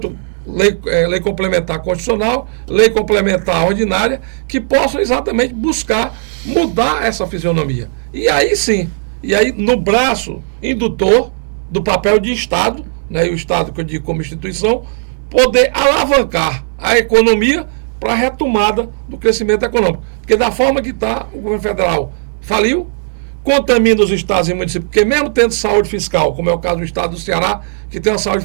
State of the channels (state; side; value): silent; left; digital silence